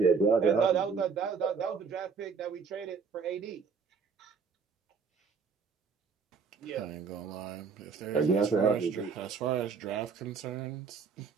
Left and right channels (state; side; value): quieter; left; 5.5 dB